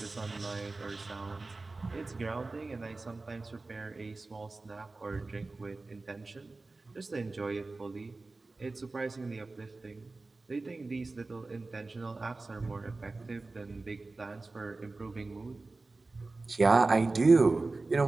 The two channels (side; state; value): left; quieter; 3.5 dB